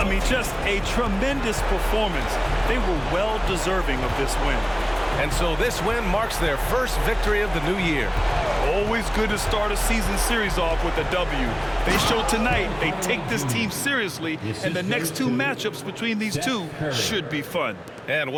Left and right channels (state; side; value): identical; both; correlation 1.00